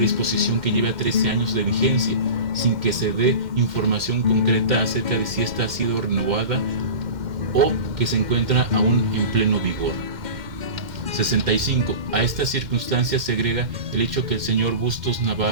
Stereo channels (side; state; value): left; late; 2.1 ms